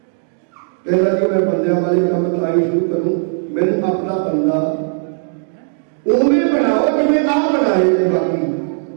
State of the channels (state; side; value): silent; left; digital silence